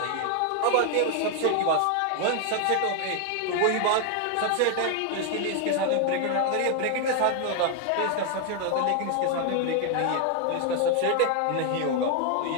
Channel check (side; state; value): both; different; correlation 0.00